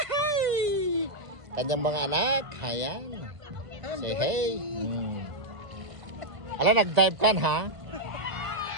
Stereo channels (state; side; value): late; left; 1.6 ms